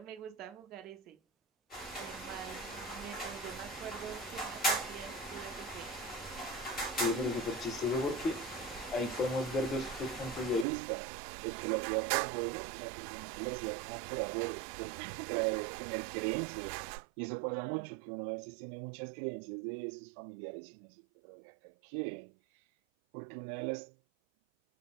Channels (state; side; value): drops out; left; at 10.7 s